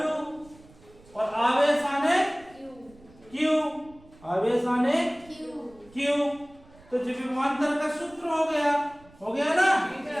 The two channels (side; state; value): right; noise; rumble, 26 dB below the sound